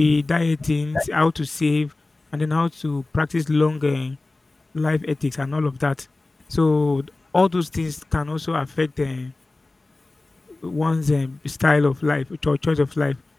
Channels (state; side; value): quieter; right; 3.1 dB